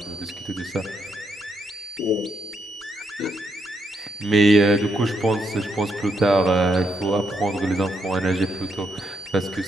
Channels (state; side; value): normal; both; correlation 0.79